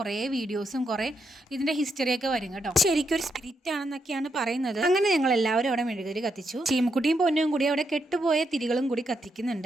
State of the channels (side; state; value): both; normal; correlation 0.80